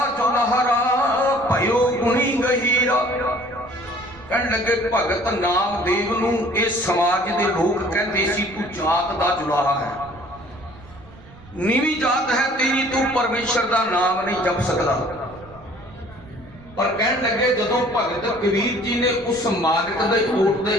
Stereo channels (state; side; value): noise; right; rumble, 21 dB below the sound